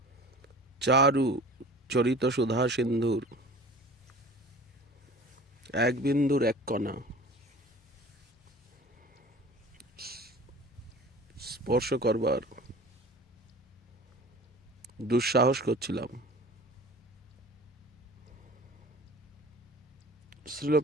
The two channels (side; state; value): both; normal; correlation 0.42